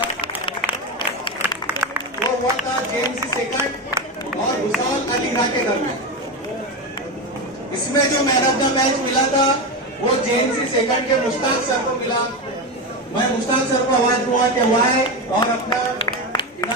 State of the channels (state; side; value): normal; both; correlation 0.17